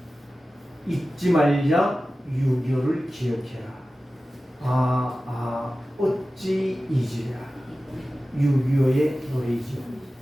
잊지 말자 6.25를 기억해라. 어찌 잊으랴. 6.25의 노래이죠.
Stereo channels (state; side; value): normal; both; correlation 0.95